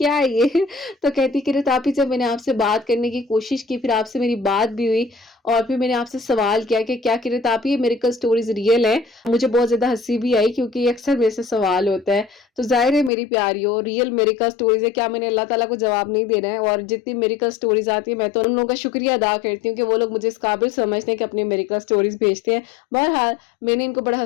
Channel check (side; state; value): right; drops out; at 13.1 s